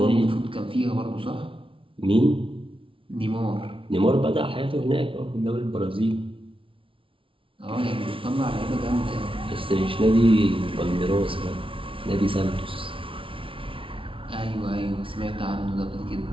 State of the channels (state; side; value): late; left; 0.25 ms